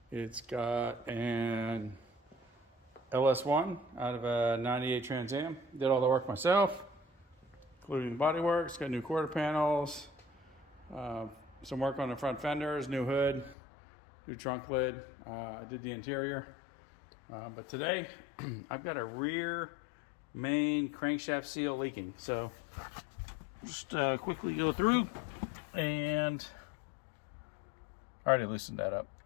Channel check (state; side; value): drops out; right; at 13.6 s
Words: It's got an LS1 out of a 98 Trans Am. Did all the work myself, including the body work. It's got new quarter panels, some work on the front fenders, new hood, new trunk lid. I did the interior. But today I've got a rear main crankshaft seal leaking. So just quickly go through, and I already loosened that up.